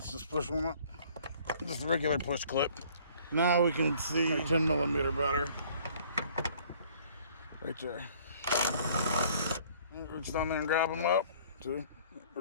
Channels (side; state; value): both; inverted; correlation -0.56